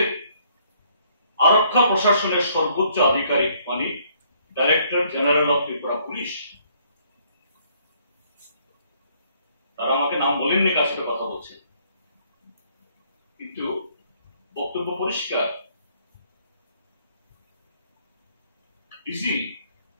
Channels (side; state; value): both; inverted; correlation -0.65